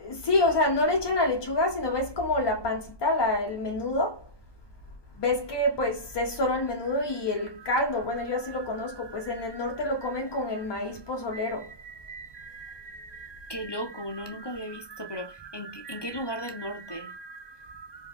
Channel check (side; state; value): right; late; 1.2 ms